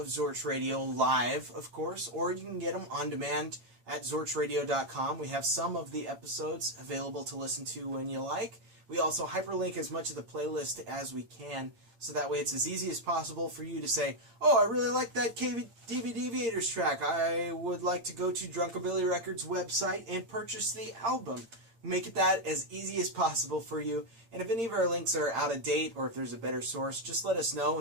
Zorch Radio live, of course, or you can get them on demand at zorchradio.com. We have some of the episodes available to listen to when you like. We also hyperlink as much of the playlist as we can, so that way it's as easy as possible for you to say, oh, I really like that DVD Deviators track. I would like to go to Drunkabilly Records website and purchase the album. Make it that as easy as possible for you. And if any of our links are out of date or if there's a better source, just let us know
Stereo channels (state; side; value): late; left; 8.8 ms